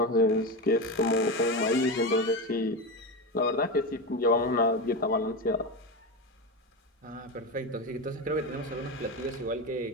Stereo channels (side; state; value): both; normal; correlation 0.17